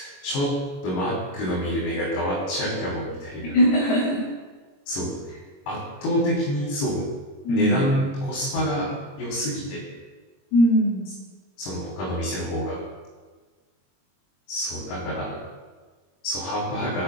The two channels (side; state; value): right; late; 22 ms